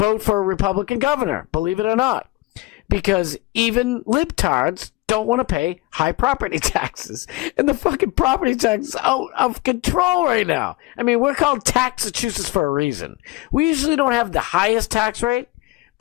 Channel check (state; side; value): quieter; right; 21.0 dB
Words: for a Republican governor, believe it or not. Because even libtards don't want to pay high property taxes. And the fucking property tax is out of control right now. I mean, we're called Taxachusetts for a reason. We usually don't have the highest tax rate,